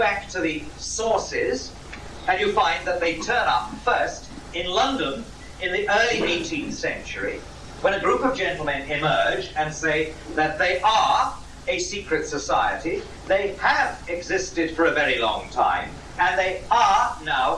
to the sources, and you find that they turn up first in London in the early 18th century, when a group of gentlemen emerge and say that they are a secret society, they have existed for a very long time, and they are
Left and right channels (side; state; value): both; identical; correlation 1.00